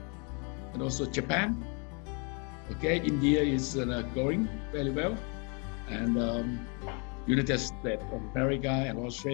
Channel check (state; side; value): quieter; right; 35.1 dB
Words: and also Japan. Okay, India is growing very well, and United States of America and